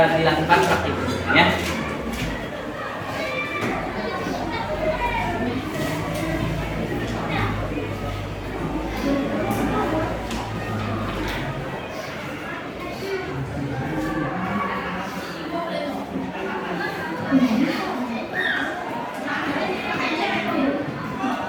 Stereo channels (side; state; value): both; identical; correlation 1.00